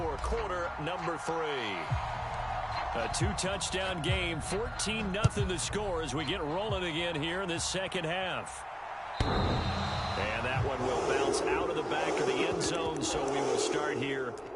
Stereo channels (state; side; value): identical; both; correlation 1.00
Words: quarter number 3. A 2-touchdown game. 14-0 the score as we get rolling again here in this second half. And that one will bounce out of the back of the end zone, so we will start here